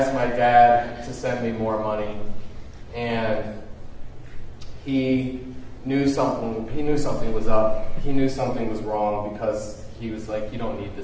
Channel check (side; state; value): both; identical; correlation 1.00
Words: my dad to send me more money. And he knew something was up. He knew something was wrong because he was like, you don't need